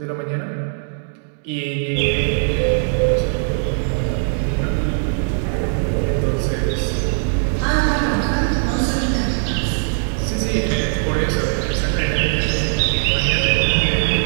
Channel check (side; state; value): left; silent; 66 dB below the other